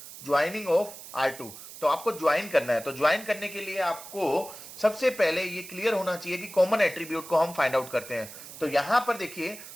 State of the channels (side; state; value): right; noise; hiss, 14 dB below the sound